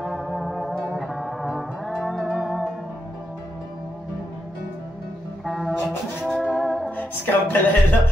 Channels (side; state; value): both; normal; correlation 0.83